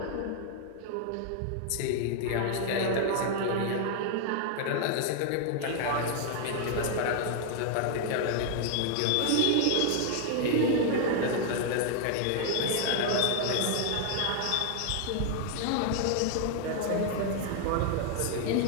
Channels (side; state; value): both; different; correlation 0.00